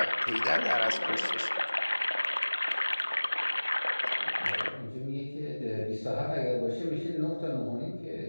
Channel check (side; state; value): both; inverted; correlation -1.00